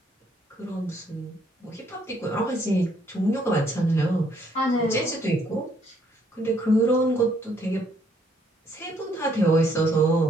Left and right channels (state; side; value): normal; both; correlation 0.68